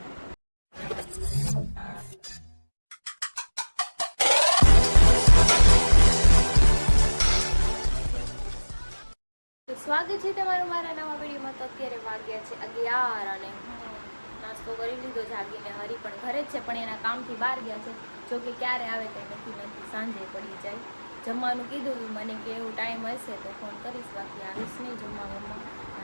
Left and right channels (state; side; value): inverted; both; correlation -1.00